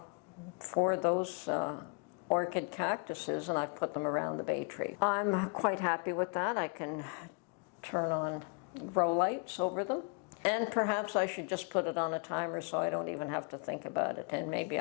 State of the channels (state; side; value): quieter; right; 36.2 dB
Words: those orchid cactuses, and I've put them around the bay tree. I'm quite happy with that. I can turn on grow lights over them. And perhaps I should just put it on a timer so I don't even have to think about it, and maybe